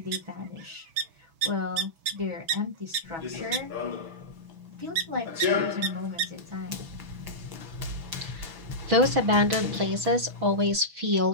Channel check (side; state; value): left; late; 6.1 ms